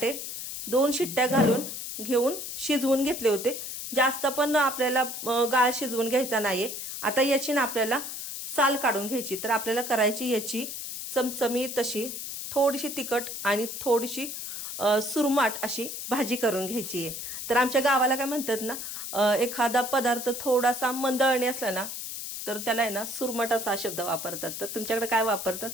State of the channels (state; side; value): noise; left; hiss, 7 dB below the sound